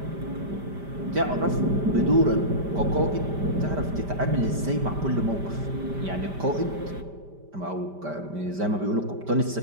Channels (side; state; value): left; late; 5.1 ms